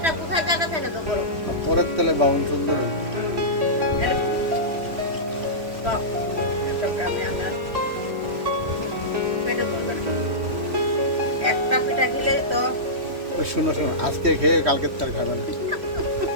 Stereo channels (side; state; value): left; late; 3.1 ms